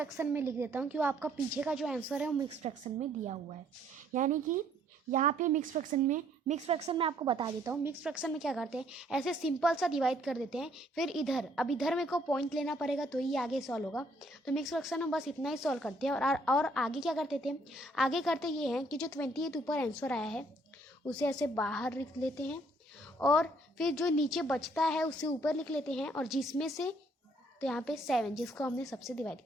में लिख देता हूँ, क्योंकि आपका पीछे का जो आंसर है वो मिक्स फ्रैक्शन में दिया हुआ है। यानी कि यहाँ पे मिक्स फ्रैक्शन में आपको बता देता हूँ, मिक्स फ्रैक्शन में क्या करते हैं, ऐसे सिंपल सा डिवाइड कर देते हैं, फिर इधर, अब इधर मेरे को पॉइंट लेना पड़ेगा तो ही आगे सॉल्व होगा। तो मिक्स फ्रैक्शन में बस इतना ही सॉल्व करते हैं। और आगे क्या करते थे, आगे करते ये हैं कि जो 28 ऊपर आंसर आया है उसे ऐसे बाहर लिख लेते हैं, और फिर जो नीचे बचता है उसे ऊपर लिख लेते हैं, और जिसमें से, तो यहाँ पे 7 जिसको हमने सबसे डिवाइड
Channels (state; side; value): normal; both; correlation 0.65